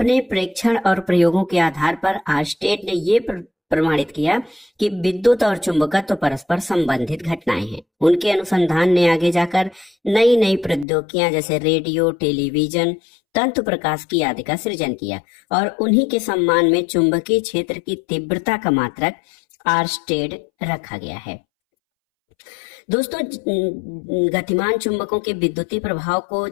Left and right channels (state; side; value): drops out; right; at 10.9 s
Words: प्रेक्षण और प्रयोगों के आधार पर आर्स्टेड ने ये प्रमाणित किया कि विद्युत और चुंबकत्व परस्पर संबंधित घटनाएं हैं। उनके अनुसंधान ने आगे जाकर नई नई प्रौद्योगिकियां जैसे रेडियो, टेलीविजन, तंतु प्रकाश की आदि का सृजन किया और उन्हीं के सम्मान में चुंबकीय क्षेत्र की तीव्रता का मात्रक आर्स्टेड रखा गया है। दोस्तों, गतिमान चुंबकों के विद्युतीय प्रभाव को